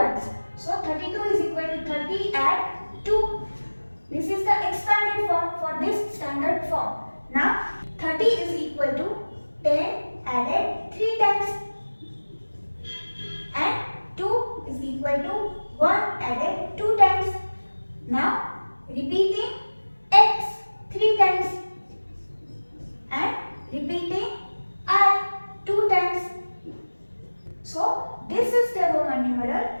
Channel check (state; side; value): inverted; both; correlation -1.00